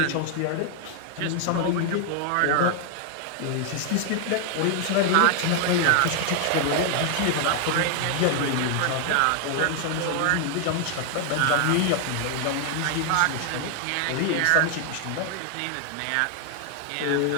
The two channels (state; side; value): different; both; correlation 0.00